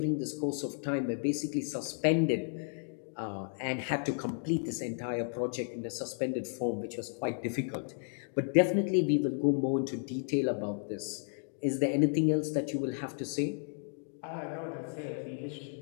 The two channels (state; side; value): silent; right; 56 dB below the other